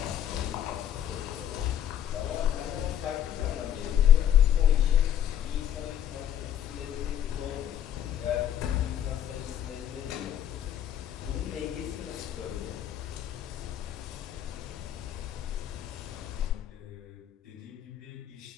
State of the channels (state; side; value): quieter; right; 10.3 dB